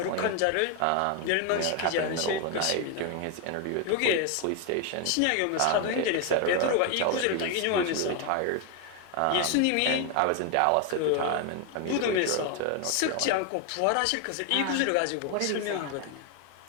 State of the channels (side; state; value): both; different; correlation 0.01